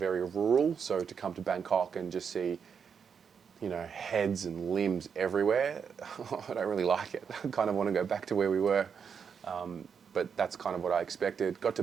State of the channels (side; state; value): left; quieter; 6.7 dB